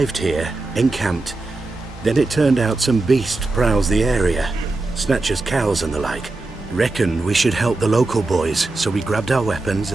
here, encamped. Then it turned out some beast prowls the area. Snatchers cows and the like. Reckoned we should help the local boys, so we grabbed our weapons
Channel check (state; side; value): quieter; left; 3.2 dB